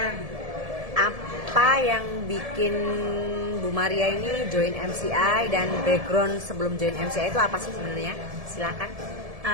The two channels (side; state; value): left; late; 1.7 ms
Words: Apa yang bikin Bu Maria ini join MCI dan background sebelum join MCI itu apa sih sebenarnya? Silakan.